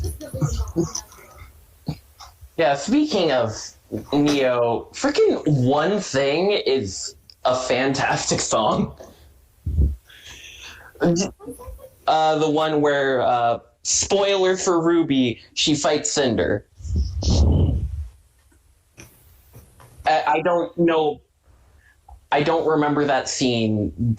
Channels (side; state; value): both; identical; correlation 1.00